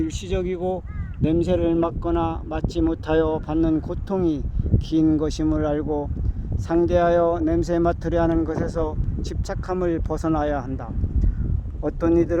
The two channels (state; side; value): identical; both; correlation 1.00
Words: 냄새를 맡거나 맡지 못하여 받는 고통이 긴 것임을 알고 상대하여 냄새 맡으려 하는 것에서 집착함을 벗어나야 한다. 어떤